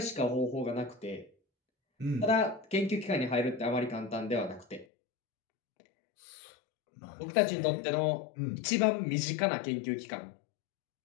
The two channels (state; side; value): drops out; right; at 4.9 s